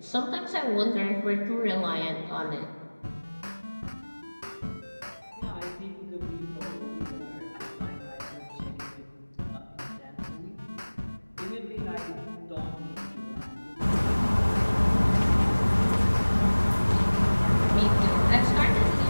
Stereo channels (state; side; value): inverted; both; correlation -1.00